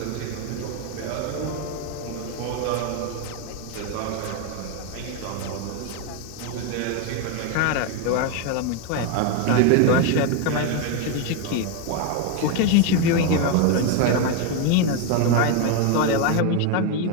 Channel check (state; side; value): different; both; correlation 0.02